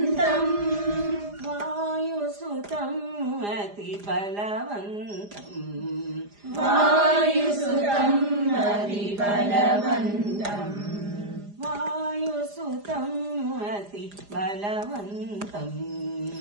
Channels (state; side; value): late; left; 4.9 ms